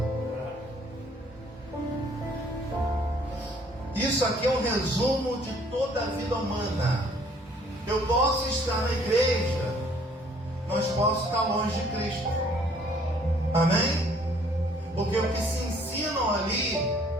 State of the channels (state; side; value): normal; both; correlation 0.60